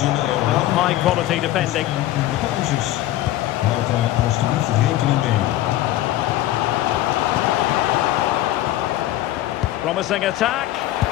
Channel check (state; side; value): quieter; right; 14.7 dB